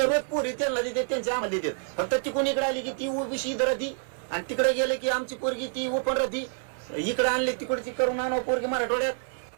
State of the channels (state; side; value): silent; left; 57 dB below the other